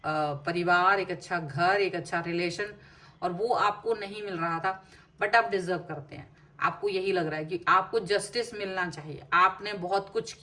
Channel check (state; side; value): identical; both; correlation 1.00